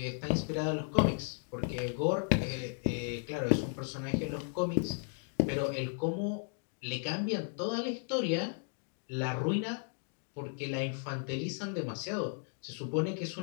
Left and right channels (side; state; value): right; silent; 54 dB below the other